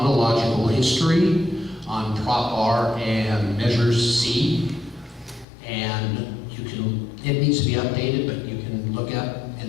history on Prop R and Measure C, and it needs to be updated, but you can look at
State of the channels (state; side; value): drops out; right; at 5.5 s